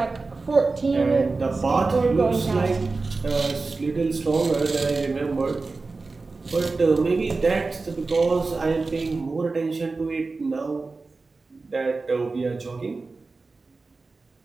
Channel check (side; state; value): left; quieter; 3.8 dB